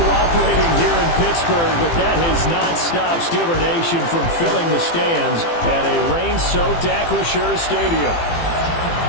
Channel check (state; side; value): late; right; 18 ms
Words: here in Pittsburgh, but that has not stopped Steeler Nation from filling the stands at a rain-soaked Acrisure Stadium.